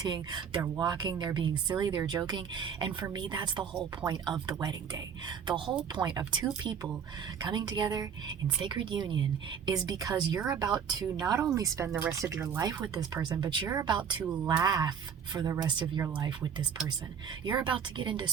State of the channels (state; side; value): quieter; left; 7.3 dB